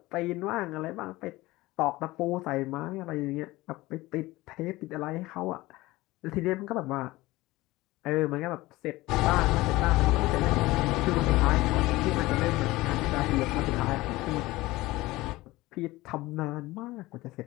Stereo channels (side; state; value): right; quieter; 19.3 dB